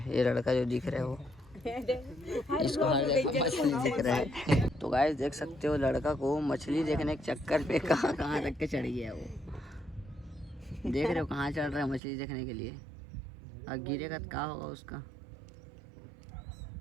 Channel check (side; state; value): left; drops out; at 12.0 s